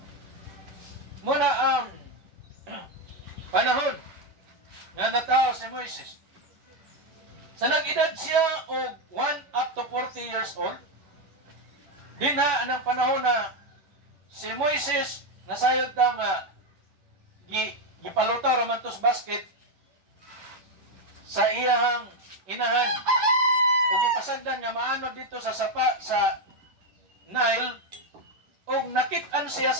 Muna ang panahon nga natao si Moises. Sa nag-edad siya og 1 up to 40 years old, dinha anang panahon na si Moises nasayod ta nga gipalutaw raman tos basket sa iyang inahan ug gipasagdan nga maanod dito sa sapa sa Nile ug nakit-an siya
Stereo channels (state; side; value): late; left; 10 ms